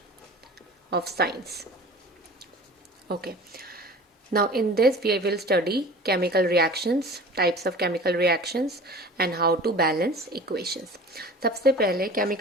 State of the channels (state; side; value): normal; both; correlation 0.41